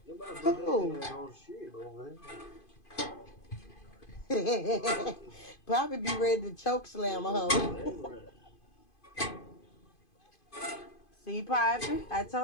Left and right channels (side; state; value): right; late; 2.5 ms